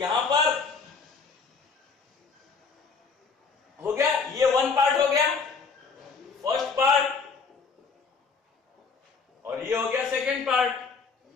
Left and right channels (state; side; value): quieter; right; 5.0 dB